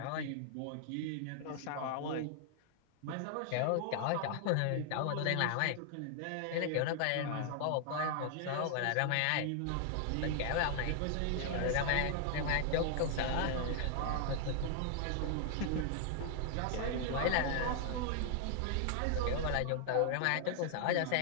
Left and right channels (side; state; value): both; different; correlation 0.00